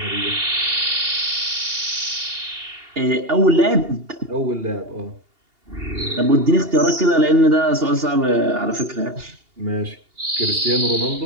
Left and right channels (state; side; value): late; left; 2.8 ms